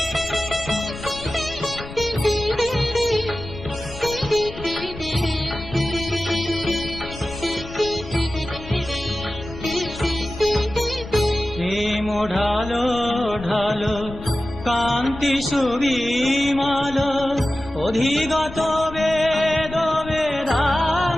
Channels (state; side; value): noise; left; rumble, 14 dB below the sound